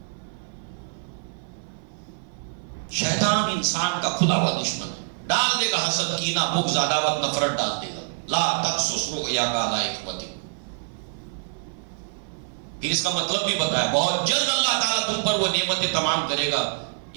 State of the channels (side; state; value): left; silent; 56 dB below the other